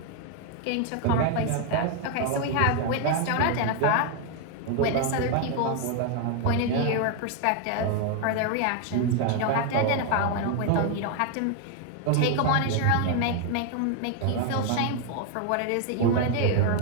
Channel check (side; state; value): both; different; correlation 0.01